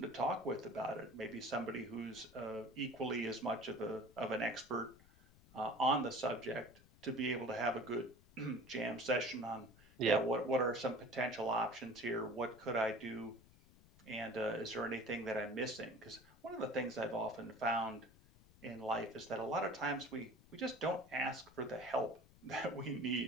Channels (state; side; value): noise; left; rumble, 25 dB below the sound